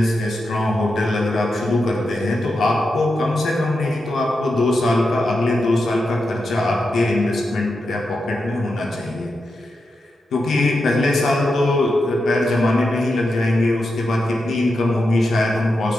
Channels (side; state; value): both; normal; correlation 0.88